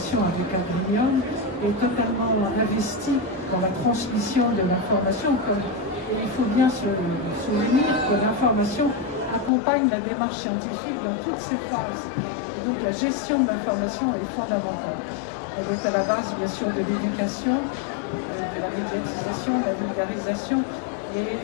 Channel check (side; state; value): right; drops out; at 9.5 s